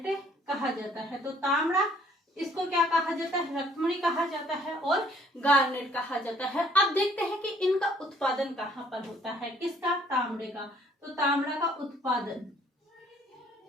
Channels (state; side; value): normal; both; correlation 0.61